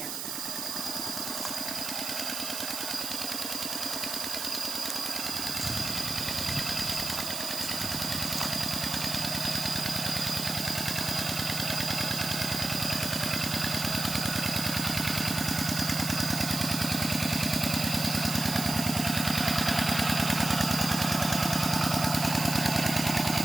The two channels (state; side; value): noise; right; hiss, 5 dB below the sound